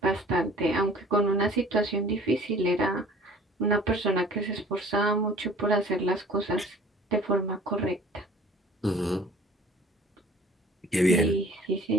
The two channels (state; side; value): normal; both; correlation 0.50